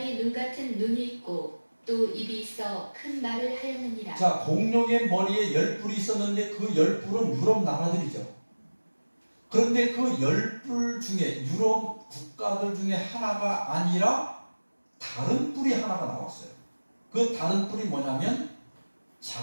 눈 같은 눈이 있고 또 입이 있어 큰 말을 하였느니라. 자, 공룡의 머리에 10뿔이 있었는데 그 10뿔은 유럽 나라들이죠. 그런데 그 10뿔 중에 유럽 국가들 중에 하나가 아니라 다른 뿔이 하나가 나왔어요. 그 다른 뿔이 뭐냐면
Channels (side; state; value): both; inverted; correlation -1.00